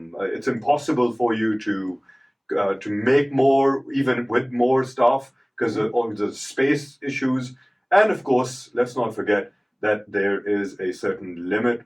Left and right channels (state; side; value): identical; both; correlation 1.00